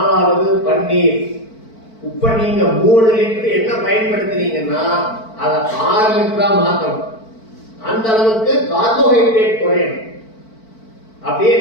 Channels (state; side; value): late; right; 4.5 ms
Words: பன்னீர். இப்ப நீங்க 3 லிட்டர் என்ன பயன்படுத்துறீங்கன்னா அதை 6 லிட்டரா மாத்தணும். அந்த அளவுக்கு கார்போஹைட்ரேட் குறையணும். அப்படியே